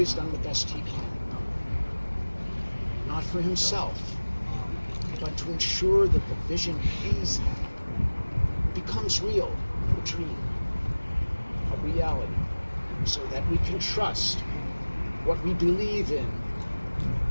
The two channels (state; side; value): inverted; both; correlation -1.00